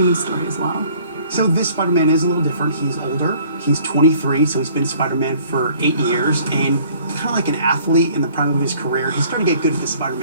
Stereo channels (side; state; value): both; inverted; correlation -0.56